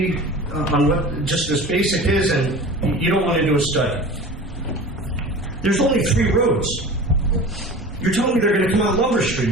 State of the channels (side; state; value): both; normal; correlation 0.37